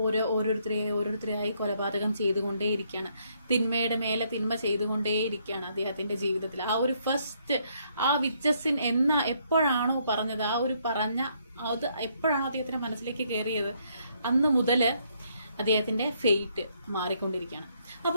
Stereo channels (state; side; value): inverted; both; correlation -0.71